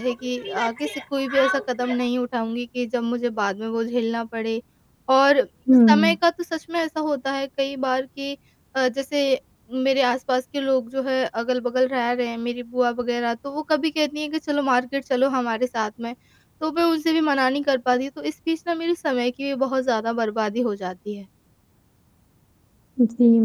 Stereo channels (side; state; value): both; identical; correlation 1.00